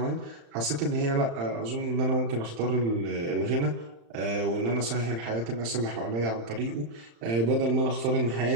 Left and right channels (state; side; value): late; left; 35 ms